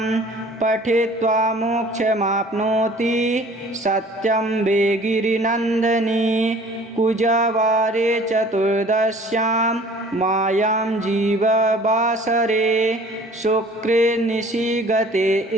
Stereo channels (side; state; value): both; normal; correlation 0.50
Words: पठित्वा मोक्षमाप्नोति सत्यं वे गिरिनन्दनी कुजवारे चतुर्दश्यां मायां जीववासरे शुक्रे निशिगते